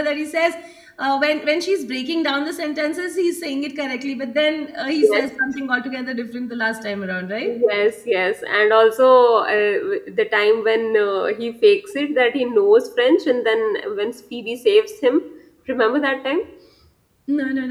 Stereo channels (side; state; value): both; identical; correlation 1.00